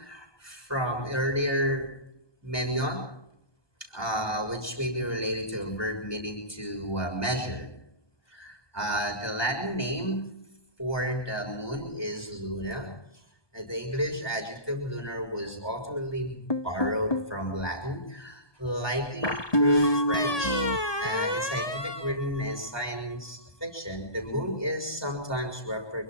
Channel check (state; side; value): late; right; 1.2 ms